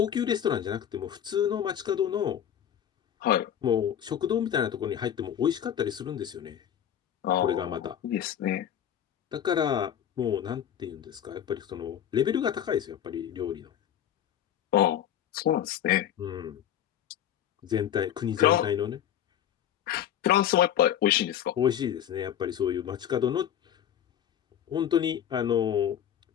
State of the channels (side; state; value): right; quieter; 10.0 dB